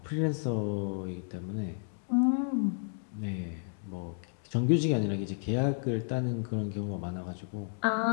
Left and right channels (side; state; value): right; silent; digital silence